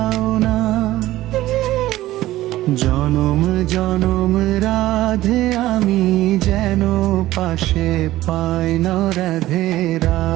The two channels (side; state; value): left; quieter; 15.7 dB